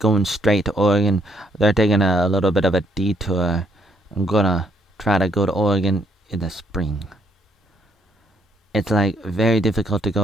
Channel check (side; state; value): both; normal; correlation 0.71